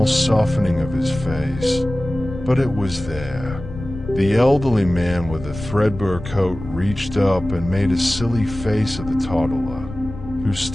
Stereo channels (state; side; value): noise; left; rumble, 11 dB below the sound